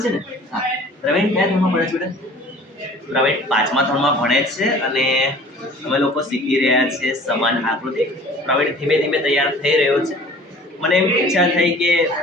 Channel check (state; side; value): normal; both; correlation 0.48